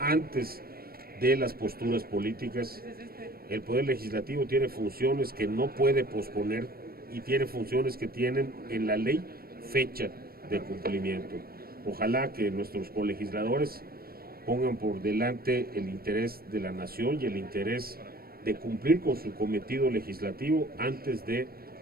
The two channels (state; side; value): late; left; 0.44 ms